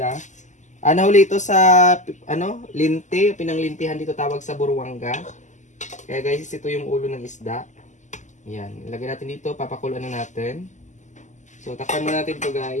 Nahuli ito sa, linti. Pinanglintihan dito tawag sa Buruanga. Kaya guys, ito yung ulo ng isda. Yan, ilagay natin dito, papakuluan na natin. So, takpan muna natin to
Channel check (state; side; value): late; right; 0.35 ms